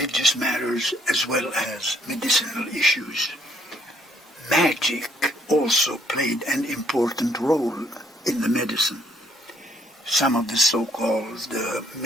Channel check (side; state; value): both; normal; correlation 0.67